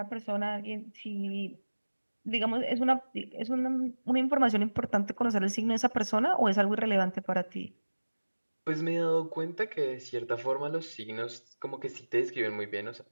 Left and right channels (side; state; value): both; inverted; correlation -1.00